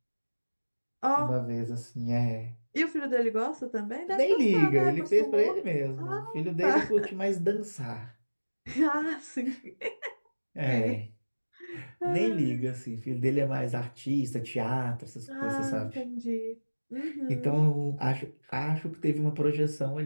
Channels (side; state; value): both; inverted; correlation -1.00